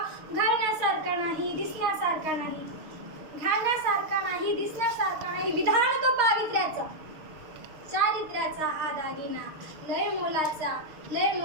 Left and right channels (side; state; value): left; late; 6.5 ms